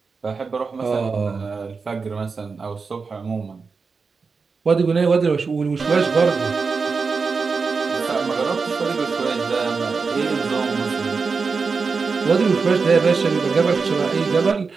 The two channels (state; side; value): quieter; left; 4.8 dB